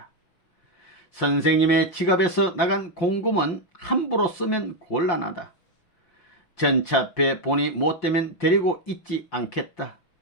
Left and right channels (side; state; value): right; late; 5.7 ms